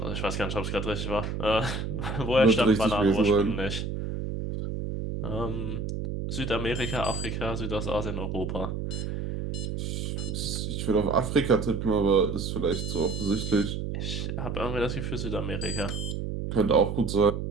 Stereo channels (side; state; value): right; noise; hum, 4 dB below the sound